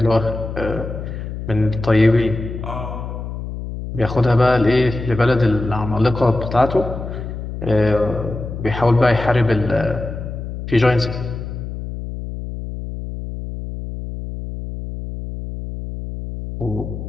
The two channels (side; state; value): left; noise; hum, 8 dB below the sound